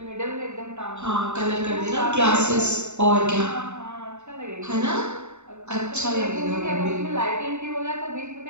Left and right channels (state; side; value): late; left; 0.82 ms